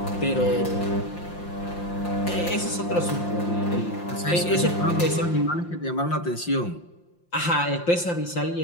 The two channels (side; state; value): right; late; 5.7 ms